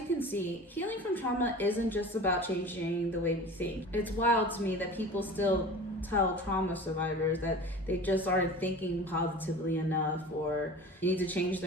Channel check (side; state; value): both; normal; correlation 0.38